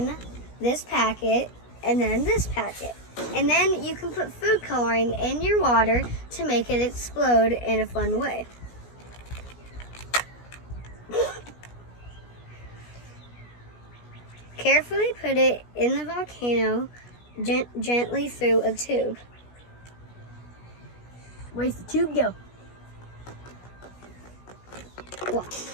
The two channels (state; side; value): late; right; 17 ms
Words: this packet and then this packet. And then you can put food coloring in your water to make it explode in a fun way. Carefully put it in the volcano gently through a tube. Where's the tube go? Well,